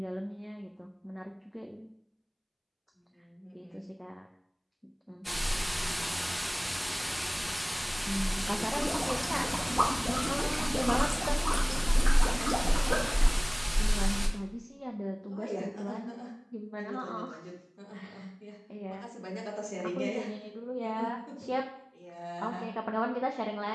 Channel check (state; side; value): identical; both; correlation 1.00